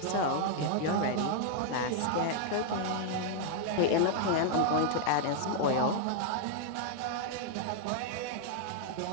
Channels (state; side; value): different; both; correlation 0.00